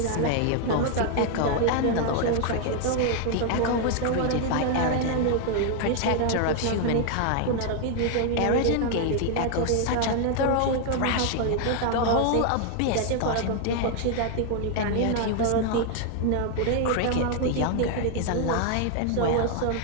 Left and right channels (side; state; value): both; different; correlation 0.00